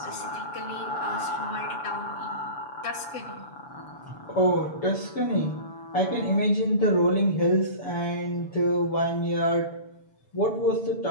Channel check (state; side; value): late; right; 7.1 ms